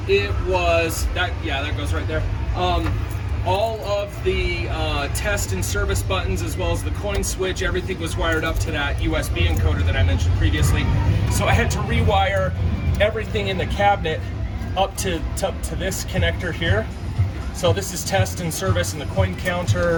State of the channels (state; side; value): identical; both; correlation 1.00